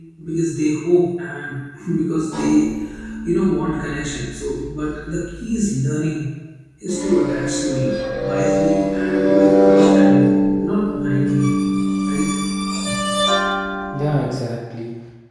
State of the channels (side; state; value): both; identical; correlation 1.00